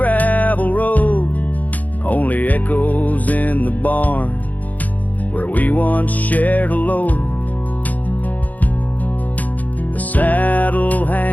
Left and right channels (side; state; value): right; late; 0.078 ms